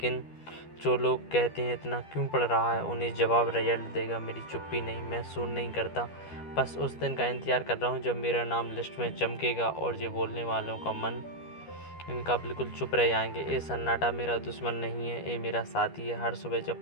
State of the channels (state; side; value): late; right; 12 ms